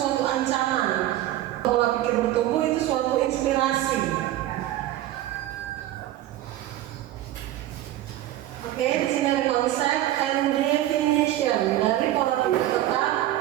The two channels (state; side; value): quieter; left; 14.1 dB